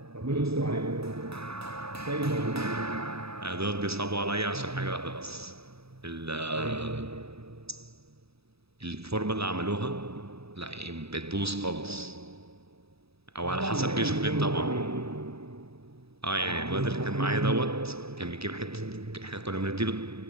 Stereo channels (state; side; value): late; left; 0.78 ms